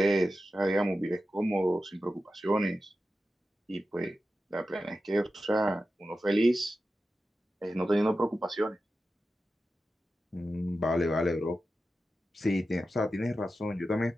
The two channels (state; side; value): normal; both; correlation 0.92